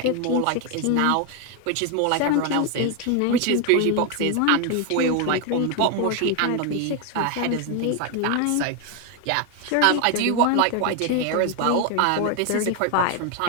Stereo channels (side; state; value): both; different; correlation 0.01